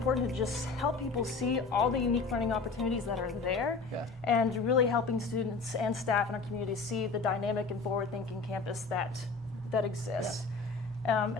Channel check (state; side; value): quieter; right; 4.2 dB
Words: to just help people see all the unique learning opportunities that are there, and really helping students and staff in our community see the dynamic and forward-thinking campus that exists.